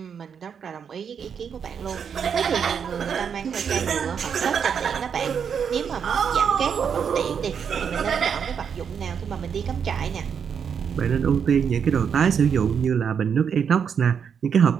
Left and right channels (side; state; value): left; quieter; 7.2 dB